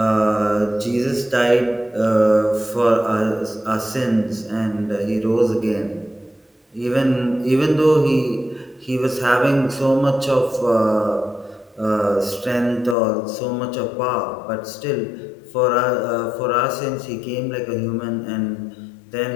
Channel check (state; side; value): drops out; right; at 13.0 s